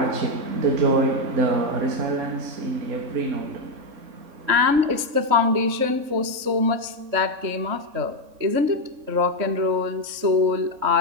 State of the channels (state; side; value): late; left; 3.6 ms